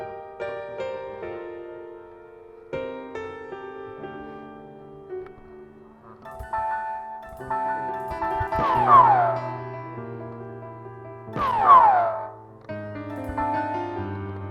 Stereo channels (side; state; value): both; identical; correlation 1.00